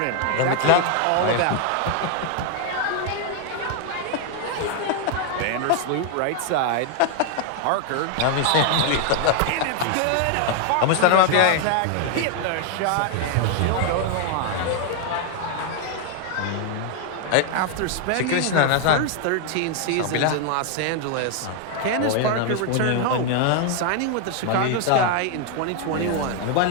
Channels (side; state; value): both; different; correlation 0.00